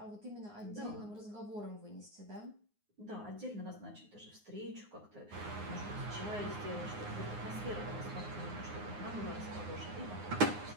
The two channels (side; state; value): left; late; 9.7 ms